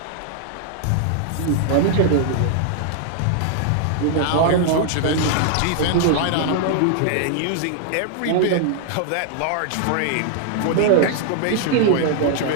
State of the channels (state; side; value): different; both; correlation 0.00